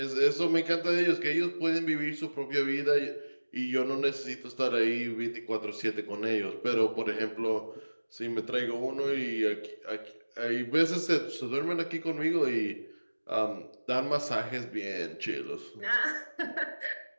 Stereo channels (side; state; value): both; inverted; correlation -1.00